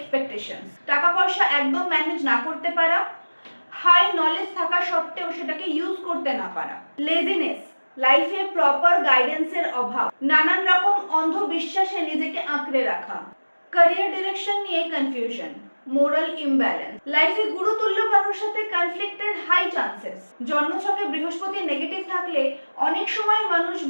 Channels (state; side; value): inverted; both; correlation -1.00